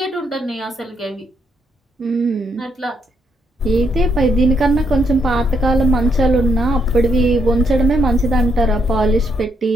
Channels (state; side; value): normal; both; correlation 0.76